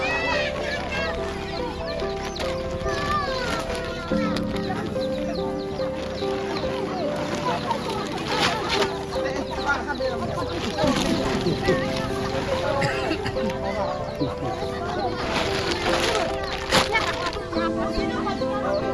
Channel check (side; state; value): both; identical; correlation 1.00